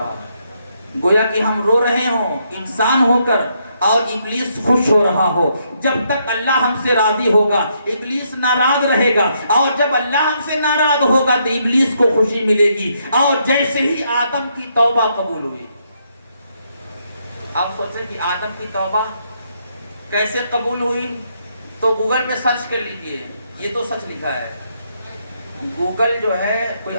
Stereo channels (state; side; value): inverted; both; correlation -0.75